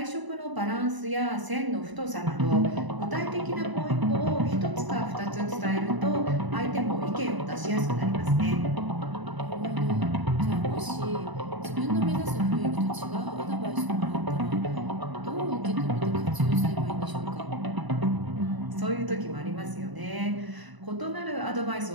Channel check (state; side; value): late; left; 1.0 ms